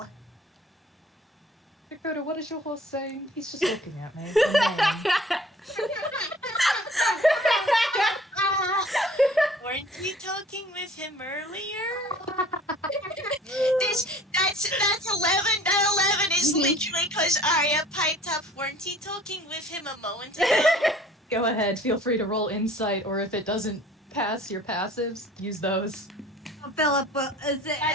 Dakota, what is your horse saying? He's just looking at me. Weren't you talking with him earlier? That's 11. That 11 is literally because Aria piped up. Weren't you talking with him a moment ago? Go ahead, feel free to roll insight, or if it doesn't pass your passives, use those. Philip,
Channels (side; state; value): both; normal; correlation 0.50